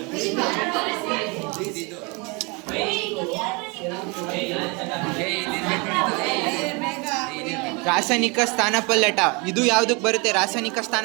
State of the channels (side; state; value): left; quieter; 29.4 dB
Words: ರಾಸಾಯನಿಕ ಸ್ಥಾನಪಲ್ಲಟ. ಇದು ಯಾವುದಕ್ಕೆ ಬರುತ್ತೆ ರಾಸಾಯನಿಕ